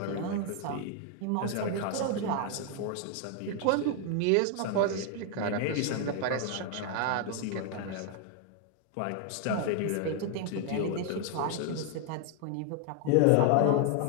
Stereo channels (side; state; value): both; different; correlation 0.00